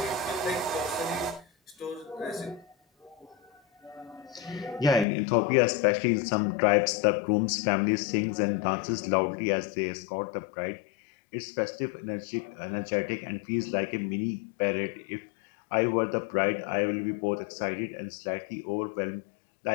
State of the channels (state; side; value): drops out; right; at 5.1 s